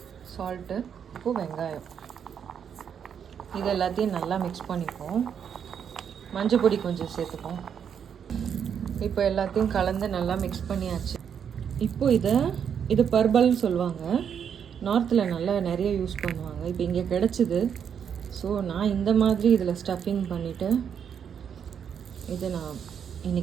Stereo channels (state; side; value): quieter; left; 7.9 dB